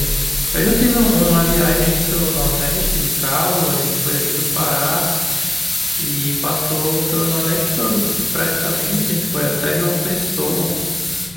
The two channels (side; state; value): left; noise; hum, 27 dB below the sound